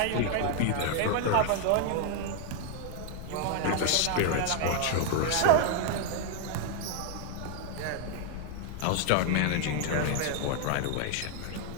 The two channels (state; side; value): different; both; correlation 0.00